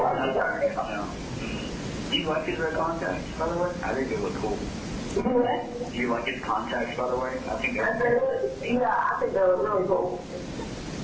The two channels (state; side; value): identical; both; correlation 1.00